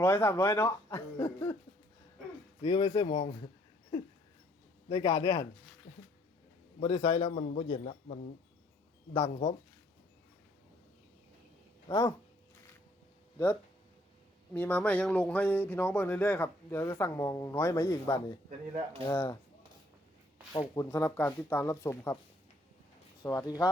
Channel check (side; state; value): both; normal; correlation 0.64